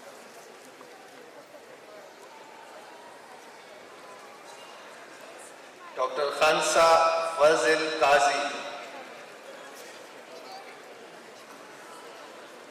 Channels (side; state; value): both; identical; correlation 1.00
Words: Dr. Khansa Fazil Qazi,